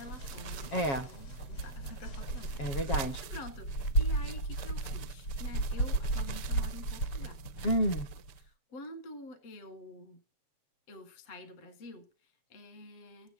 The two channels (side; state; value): right; late; 6.9 ms